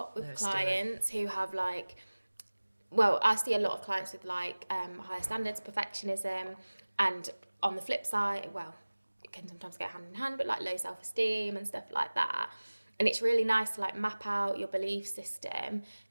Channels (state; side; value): inverted; both; correlation -1.00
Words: with clients who have like... Well, I see a lot of clients with like higher standards, perfectionism, and on the flip side, well, it can sometimes go hand in hand, but like low self-esteem and stuff like that. And it's really nice to like map out your belief system